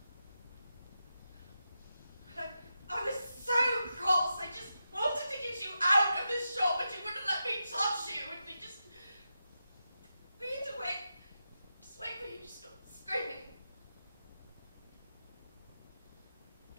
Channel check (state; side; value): inverted; both; correlation -0.89